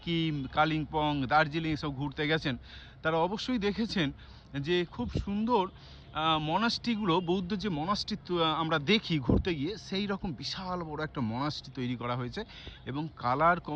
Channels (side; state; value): both; identical; correlation 1.00